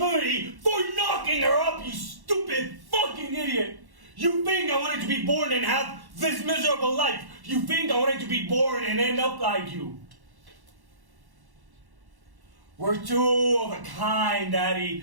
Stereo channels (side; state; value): left; late; 1.1 ms